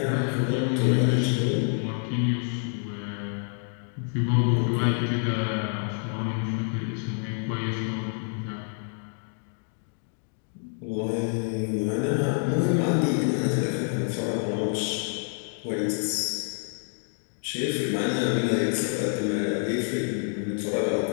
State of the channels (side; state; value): right; silent; 55 dB below the other